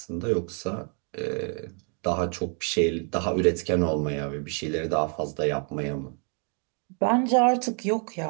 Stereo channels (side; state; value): left; quieter; 39.3 dB